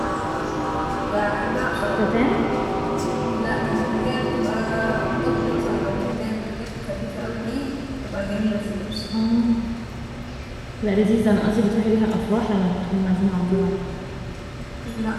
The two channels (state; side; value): identical; both; correlation 1.00